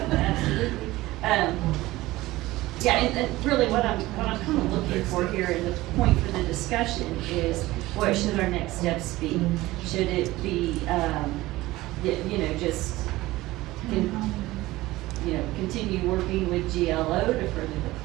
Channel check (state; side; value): quieter; left; 18.2 dB